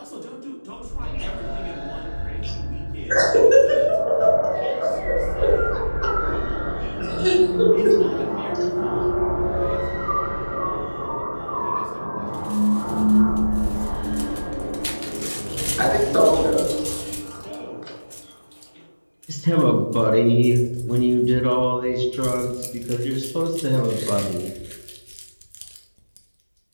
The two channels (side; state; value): both; inverted; correlation -1.00